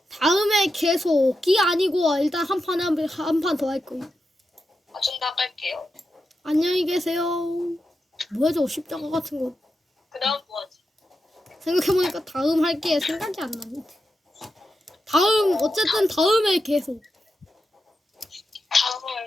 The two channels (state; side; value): normal; both; correlation 0.88